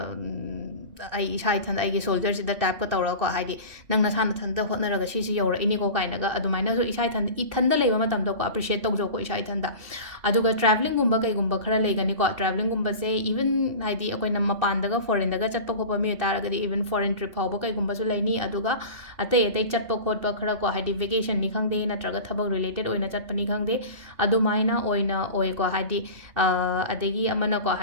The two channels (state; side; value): late; left; 2.7 ms